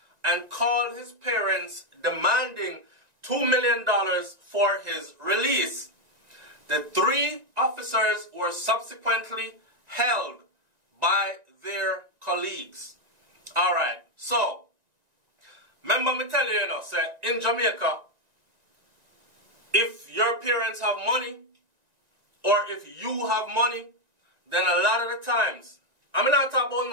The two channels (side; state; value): left; late; 1.9 ms